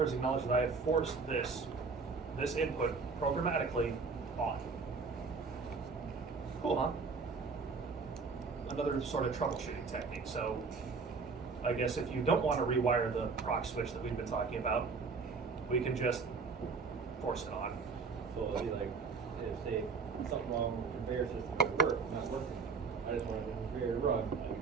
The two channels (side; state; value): left; quieter; 4.8 dB